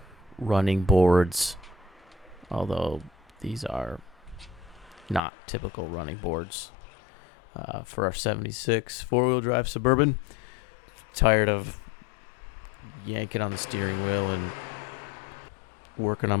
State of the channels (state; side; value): drops out; right; at 5.2 s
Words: running boards. Although these are not typical running boards. For our 76 four-wheel drive Suburban. Tired of yanking on the steering wheel and working